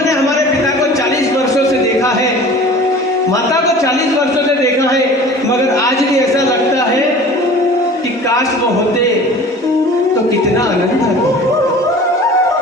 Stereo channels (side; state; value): both; normal; correlation 0.42